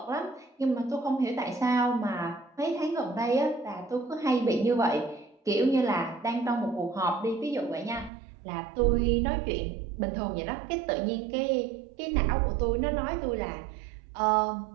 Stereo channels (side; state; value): left; drops out; at 8.1 s